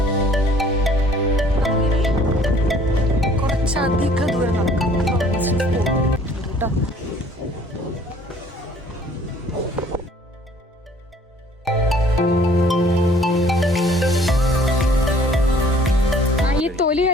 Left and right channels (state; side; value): normal; both; correlation 0.56